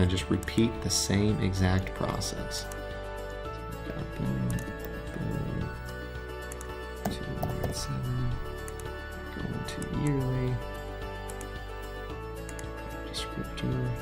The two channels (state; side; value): identical; both; correlation 1.00